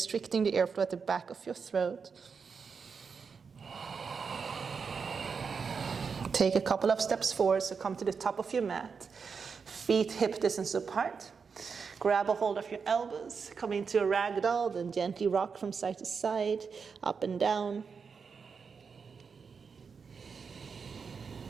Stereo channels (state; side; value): quieter; left; 5.6 dB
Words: the airflow at the back of your throat. Take a couple of steps forward, so come to the top of your mat. Feet hip distance apart. Grab a hold of your elbows, come into a ragdoll, then gently rock from side to side, up and down.